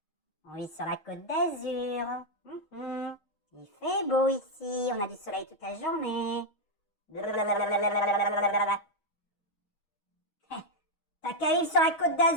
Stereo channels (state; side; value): late; right; 6.3 ms